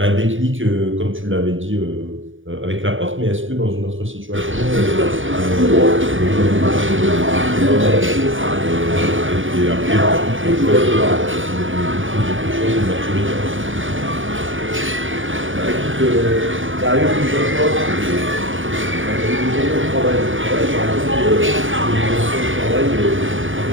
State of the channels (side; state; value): left; late; 0.57 ms